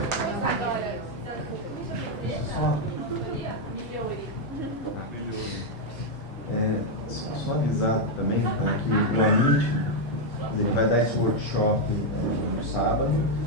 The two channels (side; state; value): both; normal; correlation 0.01